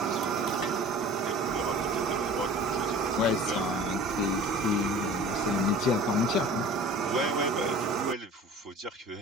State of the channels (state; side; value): normal; both; correlation 0.42